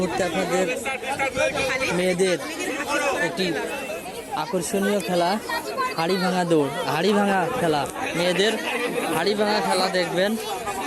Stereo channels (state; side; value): identical; both; correlation 1.00